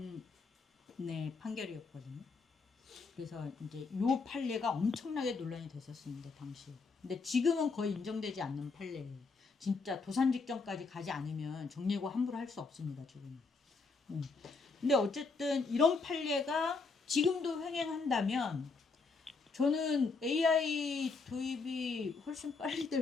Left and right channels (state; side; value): quieter; right; 4.4 dB